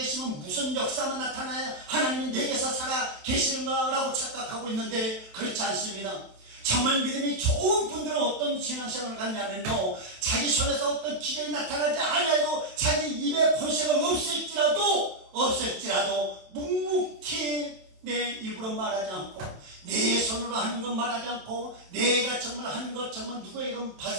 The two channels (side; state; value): left; late; 27 ms